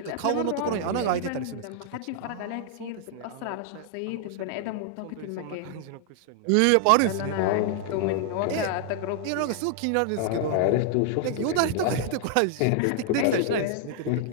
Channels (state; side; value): different; both; correlation 0.00